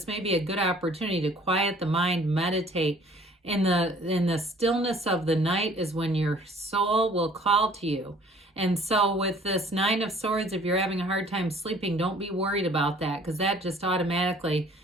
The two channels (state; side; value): normal; both; correlation 0.54